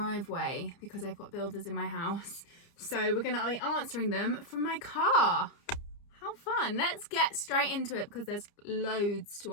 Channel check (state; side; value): late; right; 30 ms